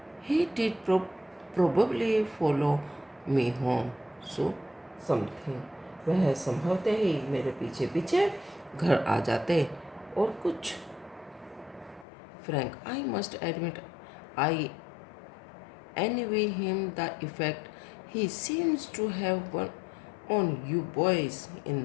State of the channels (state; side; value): drops out; right; at 12.1 s